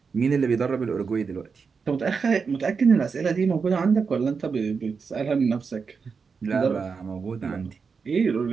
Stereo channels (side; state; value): left; quieter; 5.4 dB